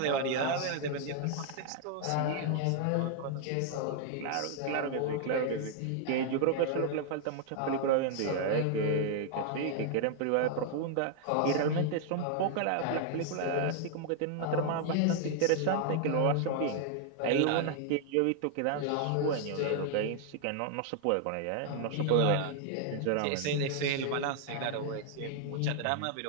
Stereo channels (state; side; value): different; both; correlation 0.00